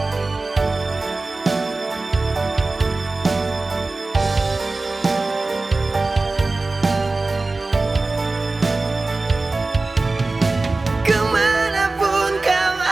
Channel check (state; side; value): quieter; left; 3.4 dB